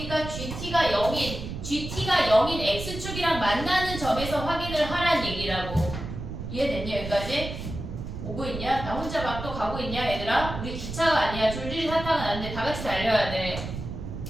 GT가 0인 X축이랑 만나는 점에서 확인을 하란 얘기라고. 이해됐냐 여기까지? 오고 있냐? 나 혼자 막 또 가고 있냐 얘들아? 우리 기차가 아니야. 줄줄이 사탕은 안 돼. 다 같이 달려야 돼.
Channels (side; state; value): right; noise; rumble, 7 dB below the sound